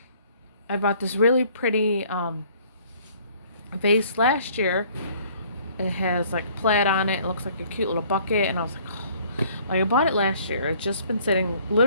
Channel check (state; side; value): inverted; both; correlation -0.58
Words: I bought this really pretty vase last year. It has like plaid on it. It looks like a cute little bucket. And I was like, oh. Like I bought it last year. It's just